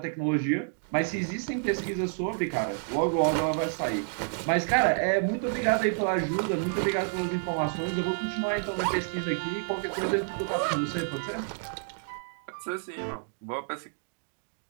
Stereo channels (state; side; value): silent; left; digital silence